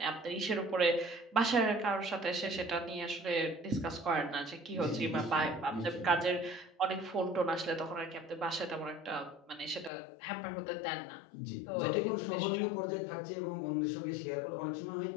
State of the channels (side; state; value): right; drops out; at 9.9 s